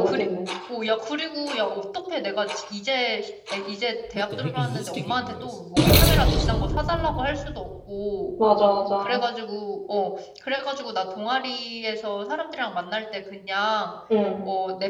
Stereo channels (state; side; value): identical; both; correlation 1.00